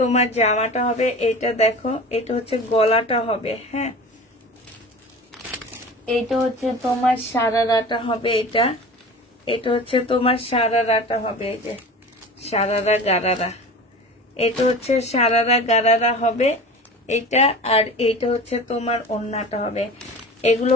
জামাটা হবে। এটা দেখো, এটা হচ্ছে গলাটা হবে। হ্যাঁ, এটা হচ্ছে তোমার সারারাটা হবে। এটা হচ্ছে তোমার সারারাটা হবে। এই যে সারারা গারারা, এটা হচ্ছে সারারা গারারা হবে এটা। আর এইটা হচ্ছে তোমার ওড়নাটা হবে। এগুলো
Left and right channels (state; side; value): normal; both; correlation 0.36